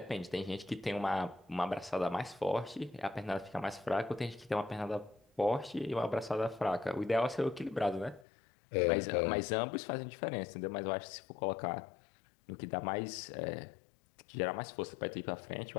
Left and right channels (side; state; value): right; drops out; at 8.2 s